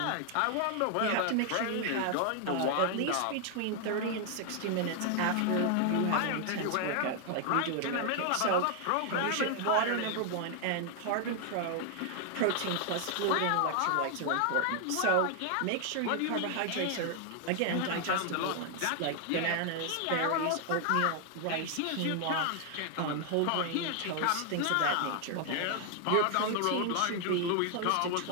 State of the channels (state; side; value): different; both; correlation 0.00